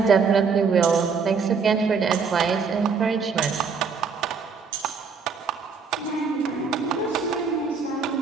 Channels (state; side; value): quieter; left; 5.4 dB